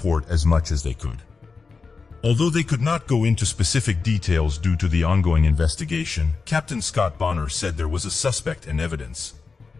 as much as they could. Although they could not go into specific details due to the ongoing investigation, Captain Scott Bonner said there was a suspect and evidence.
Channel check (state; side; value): quieter; right; 4.6 dB